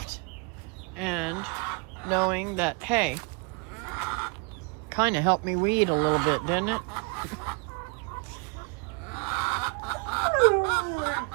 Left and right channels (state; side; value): quieter; left; 32.3 dB